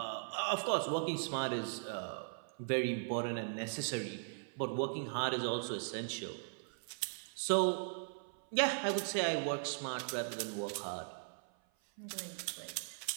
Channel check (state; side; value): silent; left; 52 dB below the other